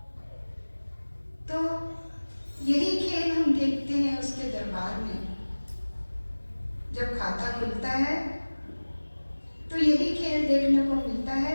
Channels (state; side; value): inverted; both; correlation -1.00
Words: तो यही खेल हम देखते हैं उसके दरबार में। जब खाता खुलता है तो यही खेल देखने को मिलता है